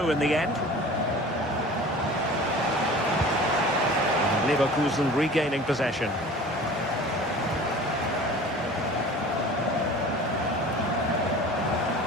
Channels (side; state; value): both; normal; correlation 0.41